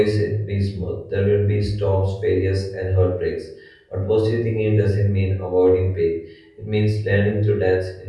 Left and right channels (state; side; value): identical; both; correlation 1.00